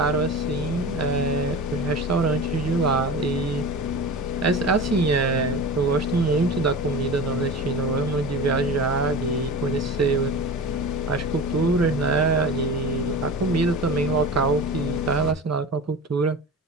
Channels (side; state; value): both; normal; correlation 0.32